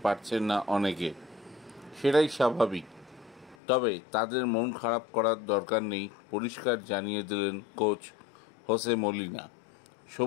পারছেন না অনেকে। সেটাই স্বাভাবিক। তবে তাদের মন খারাপ করার দরকার নেই, পরিষ্কার জানিয়ে দিলেন কোচ হোসে মলিনা।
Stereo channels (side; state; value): right; drops out; at 3.6 s